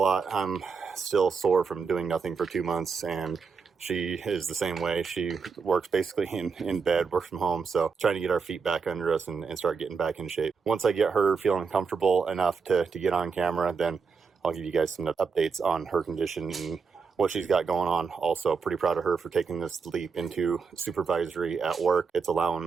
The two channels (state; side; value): quieter; left; 5.4 dB